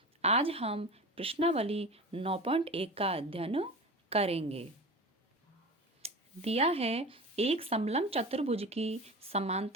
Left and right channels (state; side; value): normal; both; correlation 0.32